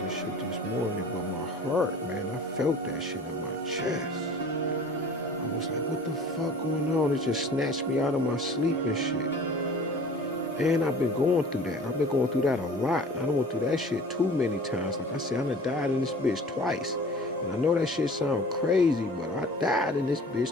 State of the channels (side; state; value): both; normal; correlation 0.44